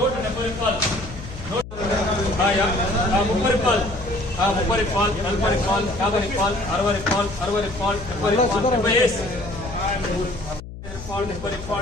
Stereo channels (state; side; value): noise; left; hum, 13 dB below the sound